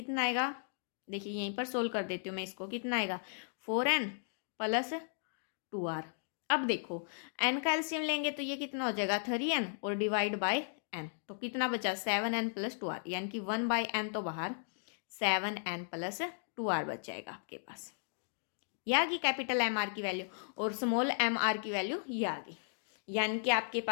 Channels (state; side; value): silent; right; digital silence